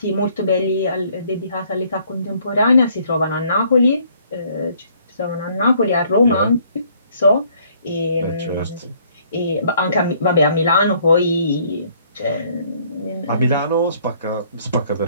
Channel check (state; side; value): inverted; both; correlation -0.63